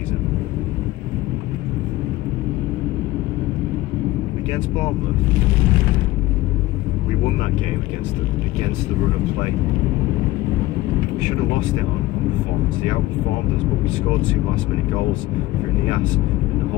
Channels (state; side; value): quieter; right; 17.7 dB